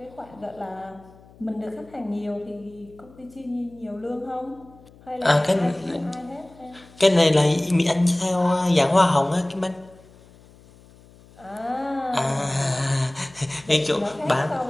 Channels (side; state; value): left; noise; hum, 25 dB below the sound